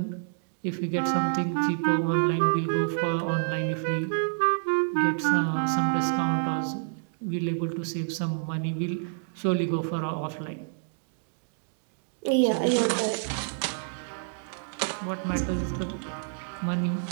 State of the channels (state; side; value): silent; left; digital silence